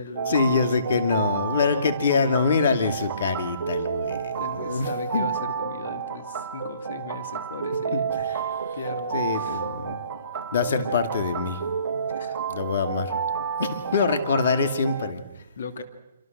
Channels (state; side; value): inverted; both; correlation -0.57